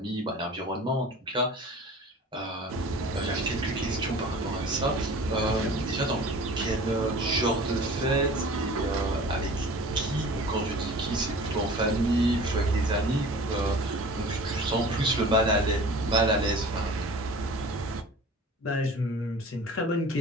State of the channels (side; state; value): both; normal; correlation 0.42